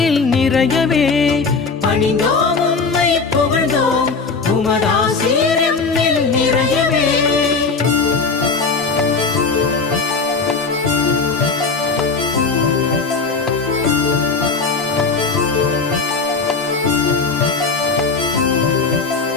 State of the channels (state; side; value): quieter; right; 4.5 dB